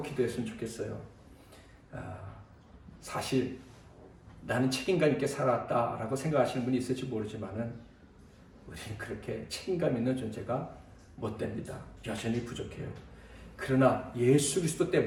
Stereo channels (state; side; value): identical; both; correlation 1.00